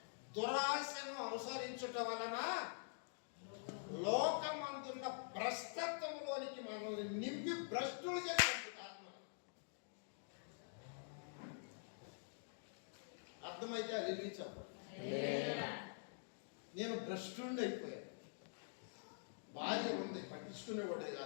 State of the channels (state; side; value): silent; right; digital silence